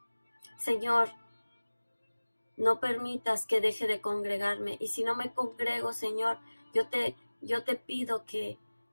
Señor, no permitas que deje de congregarme y si no me congrego, Señor, yo te pido que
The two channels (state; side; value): inverted; both; correlation -1.00